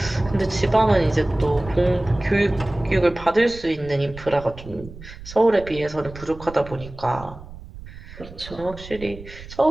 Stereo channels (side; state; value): right; noise; rumble, 15 dB below the sound